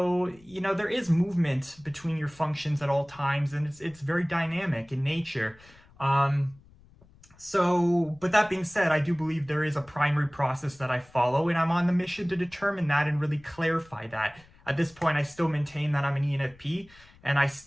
there is movement between your functions at all times, and it's very dynamic in nature. But that being said, I do believe there is a primary process that I follow, and I'm on the mission to determine that and really clarify that. At this point, I still maintain that I'm an ENFP, and I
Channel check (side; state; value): left; noise; rumble, 27 dB below the sound